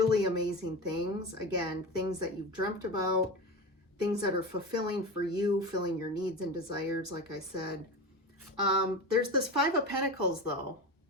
amazing things. Again, things that you've dreamt about, things that are fulfilling for you, filling your needs and desires, like I said. There's this Five of Pentacles though.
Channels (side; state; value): both; normal; correlation 0.25